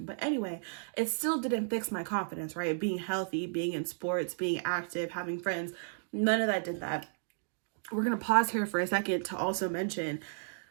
But anyway, it still didn't fix my confidence, right? Being healthy, being in sports, being active, having friends, none of that did that. We're gonna pause here for a second to also mention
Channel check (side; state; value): left; silent; digital silence